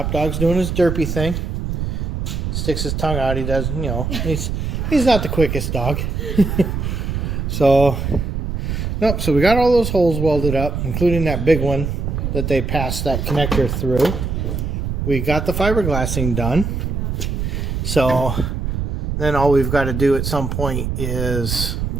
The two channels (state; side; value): noise; right; rumble, 2 dB below the sound